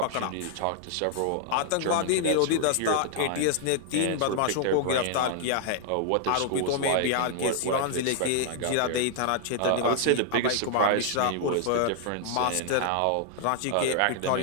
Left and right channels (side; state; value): both; different; correlation -0.01